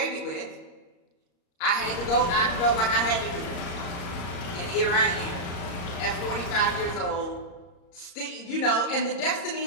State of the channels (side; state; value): right; late; 34 ms